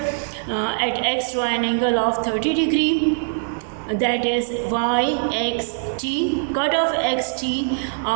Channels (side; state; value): left; silent; digital silence